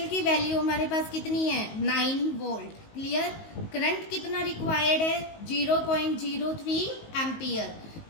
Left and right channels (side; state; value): right; late; 19 ms